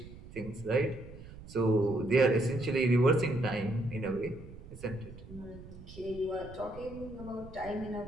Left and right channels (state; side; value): noise; right; rumble, 15 dB below the sound